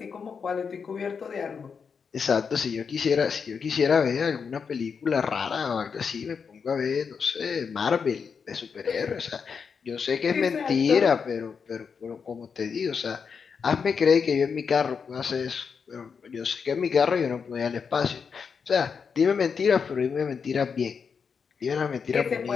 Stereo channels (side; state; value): right; quieter; 6.0 dB